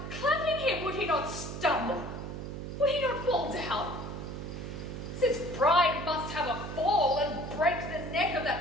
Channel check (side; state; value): right; noise; hum, 7 dB below the sound